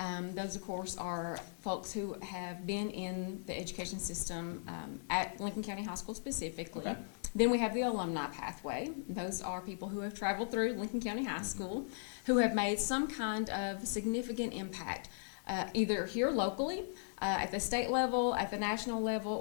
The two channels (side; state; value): right; silent; 53 dB below the other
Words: Those, of course, are folks who have been in the education system at Lincoln County High School specifically. Okay. Then we have the alumni pathway. Those are people who have traveled through Lincoln County High School, who have made some kind of significant impact, either here locally, at the state level, at the national level,